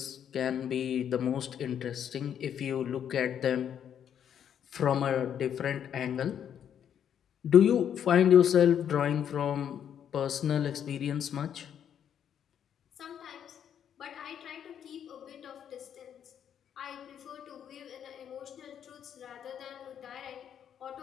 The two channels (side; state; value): right; quieter; 9.0 dB